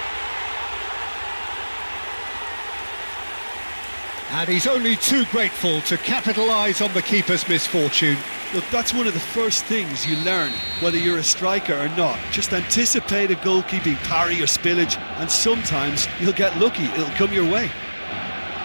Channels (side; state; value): both; inverted; correlation -1.00